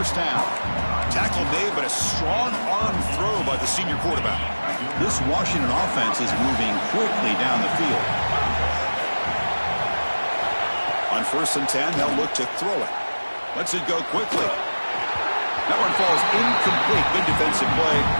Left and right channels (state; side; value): inverted; both; correlation -1.00